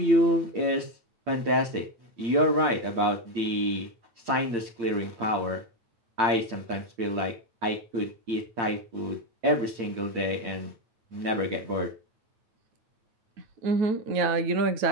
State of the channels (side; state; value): left; late; 8.8 ms